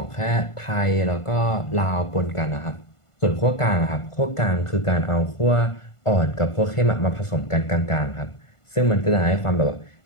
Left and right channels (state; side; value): late; right; 1.5 ms